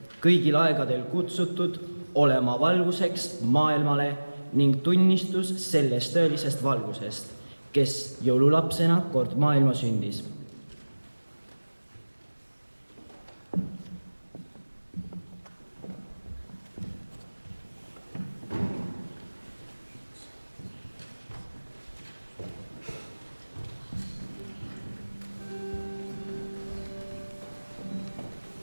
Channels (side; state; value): both; inverted; correlation -1.00